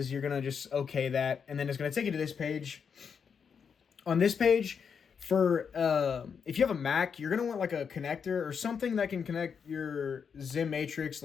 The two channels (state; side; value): quieter; right; 6.6 dB